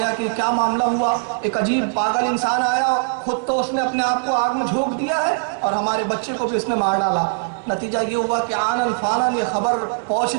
کہ کیا معاملہ ہوا. ایک عجیب پاگل انسان آیا, خود تو اس نے اپنے آپ کو آگ میں جھونک دیا ہے اور ہمارے بچے کو بھی اس نے مار ڈالا. نتیجہ یہ ہوا کہ آنن فانن یہ خبر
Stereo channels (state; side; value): silent; left; digital silence